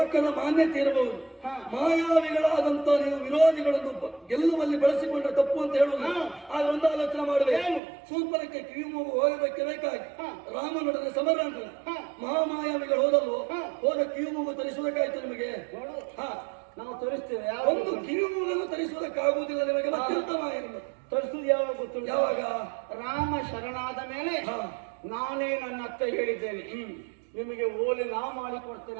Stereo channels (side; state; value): left; drops out; at 7.8 s